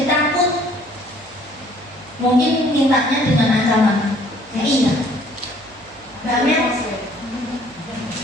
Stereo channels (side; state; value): right; noise; hum, 27 dB below the sound